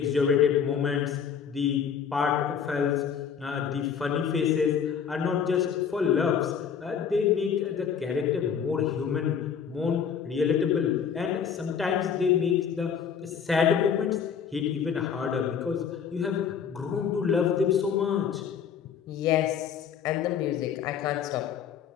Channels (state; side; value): quieter; right; 7.3 dB